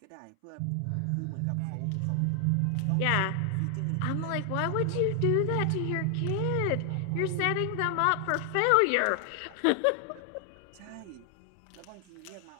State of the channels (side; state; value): both; different; correlation 0.00